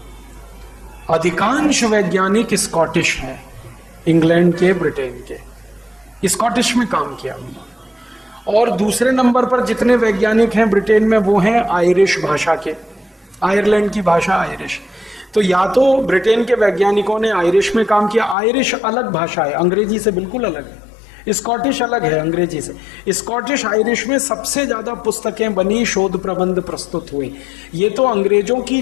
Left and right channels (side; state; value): right; drops out; at 18.4 s